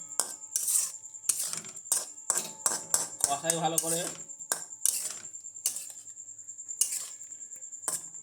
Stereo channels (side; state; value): both; identical; correlation 1.00